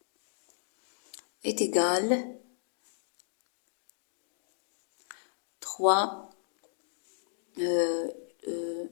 est égal 3,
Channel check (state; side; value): silent; right; digital silence